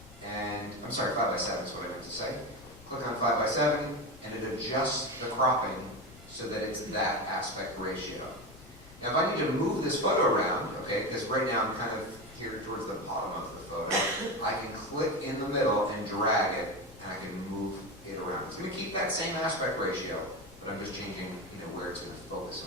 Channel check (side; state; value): left; noise; rumble, 21 dB below the sound